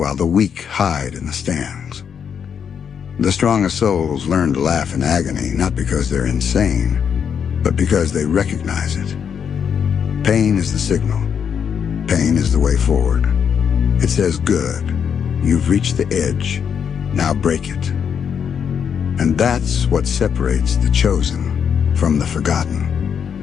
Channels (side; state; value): right; quieter; 7.5 dB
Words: the weak hide in the stands. The strongest souls learn to laugh in agony, not because they're insane, but because they recognize it. Pain is the signal. Pain is the way forward. It says, good, you've reached the edge, now break it. And that's what separates the chosen from the